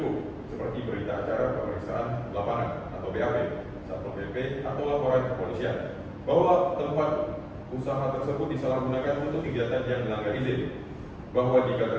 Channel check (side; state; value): both; identical; correlation 1.00